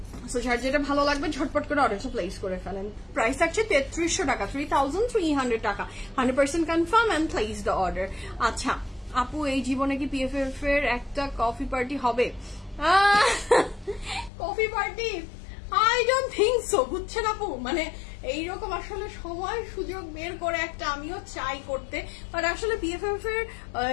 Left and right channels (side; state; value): right; drops out; at 14.3 s